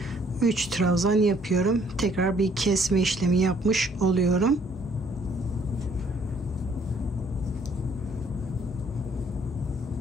3 trabzan yapıyorum. Tekrar bir kesme işlemi yapmış oluyorum.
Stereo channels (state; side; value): normal; both; correlation 0.63